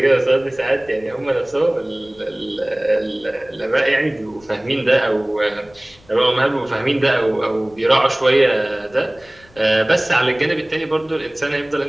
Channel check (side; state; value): left; noise; rumble, 28 dB below the sound